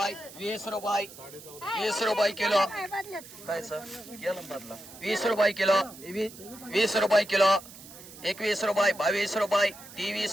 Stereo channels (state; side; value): noise; right; hiss, 17 dB below the sound